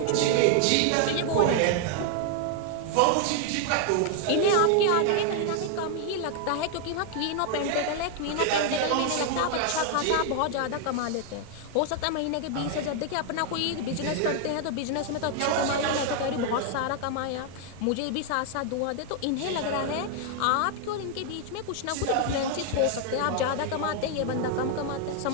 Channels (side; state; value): both; different; correlation 0.00